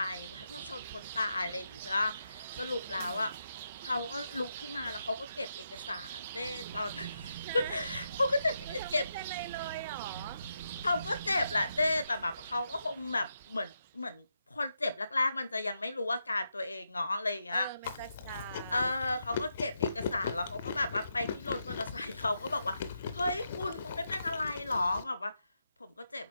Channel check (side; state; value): both; inverted; correlation -0.84